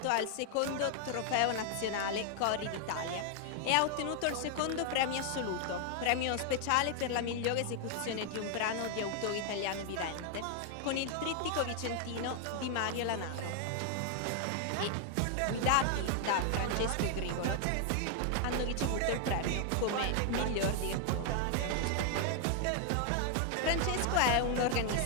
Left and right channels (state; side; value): different; both; correlation 0.00